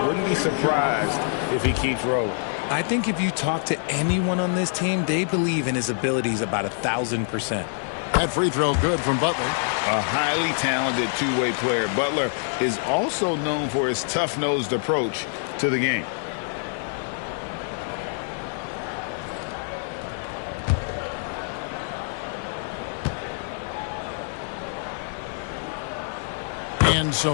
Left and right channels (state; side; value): silent; right; 61 dB below the other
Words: be surprised if he keeps rolling. I think if you talk to anyone on this team, they believe in his abilities about 1,000%. That free throw good from Butler. A highly talented two-way player. Butler is also known for his tough-nosed approach to the game. And